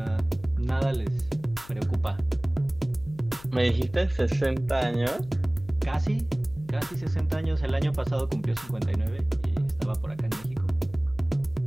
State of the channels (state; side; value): noise; left; hum, 21 dB below the sound